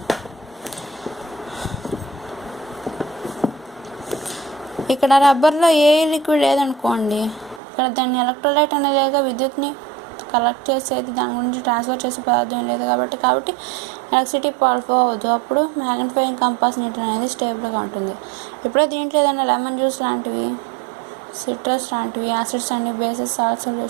ఇక్కడ రబ్బర్లో ఏ లిక్విడ్ లేదనుకోండి, ఇక్కడ దాన్ని ఎలక్ట్రోలైట్ అనేది విద్యుత్ని కలెక్ట్ చేసేది, దాని గురించి ట్రాన్స్ఫర్ చేసే పదార్థం లేదు కాబట్టి ఎలక్ట్రిసిటీ ఫ్లో అవ్వదు. అప్పుడు మ్యాగ్నిఫైయింగ్ కంపాస్ నీడిల్ అనేది స్టేబుల్గా ఉంటుంది. ఇప్పుడే దీంట్లో ఏదైనా లెమన్ జ్యూస్ లాంటివి సిట్రస్ లాంటివి acids and bases salt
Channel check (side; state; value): left; drops out; at 7.6 s